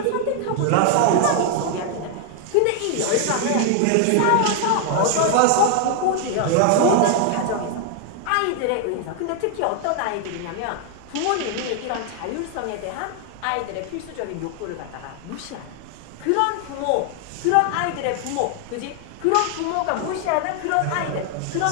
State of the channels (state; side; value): different; both; correlation 0.00